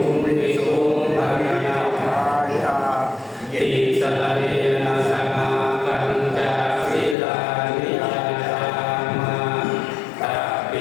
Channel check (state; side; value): drops out; right; at 7.2 s